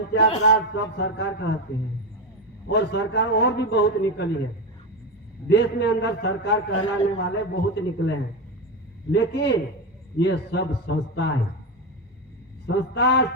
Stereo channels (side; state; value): both; normal; correlation 0.13